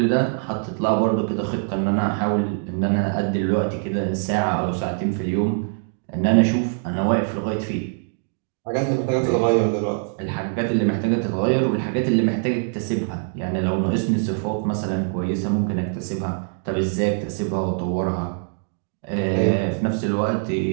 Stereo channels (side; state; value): left; silent; digital silence